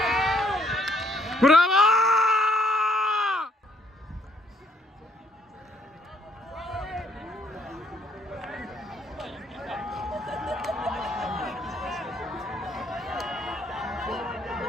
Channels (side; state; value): both; normal; correlation 0.69